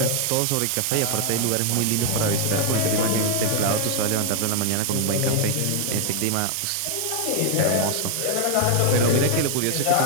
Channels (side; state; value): both; different; correlation 0.00